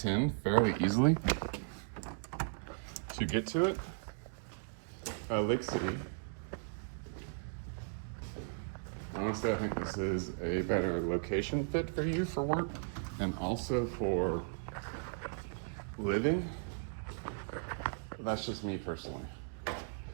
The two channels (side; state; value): left; silent; digital silence